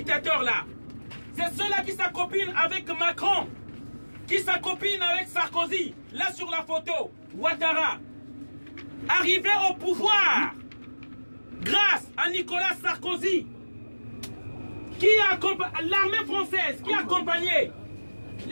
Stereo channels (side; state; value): both; inverted; correlation -1.00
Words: C'est ceux-là qui s'accopinent avec Macron, qui s'accopinent avec Sarkozy. Là sur la photo, Ouattara. Arrivé au pouvoir grâce à Nicolas Sarkozy, qui a l'armée française qui a accompagné